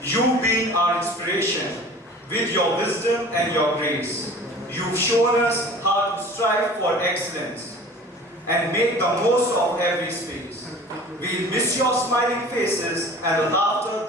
You being our inspiration, with your wisdom and your grace, you've shown us how to strive for excellence and make the most of every space. We'll miss your smiling faces and the laughter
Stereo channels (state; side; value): normal; both; correlation 0.43